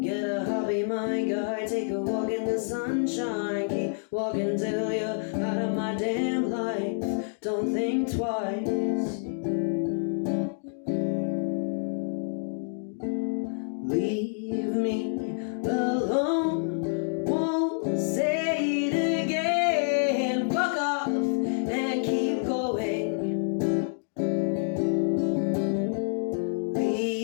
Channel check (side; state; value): right; silent; digital silence